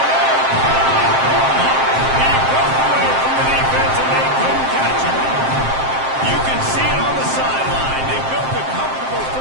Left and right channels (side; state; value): left; late; 7.6 ms